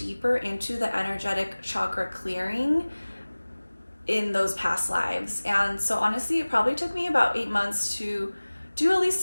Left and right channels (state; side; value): inverted; both; correlation -1.00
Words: into the energetic chakra clearing in those past lives. And so honestly, it probably took me about 8 months to do at least